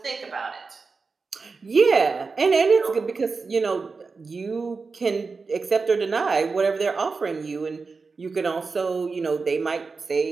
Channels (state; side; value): quieter; left; 4.5 dB